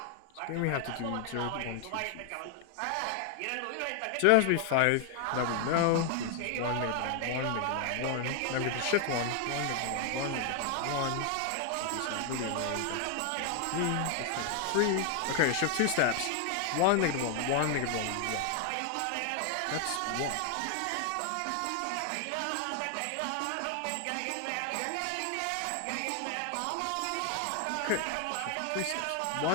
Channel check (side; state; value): both; different; correlation 0.00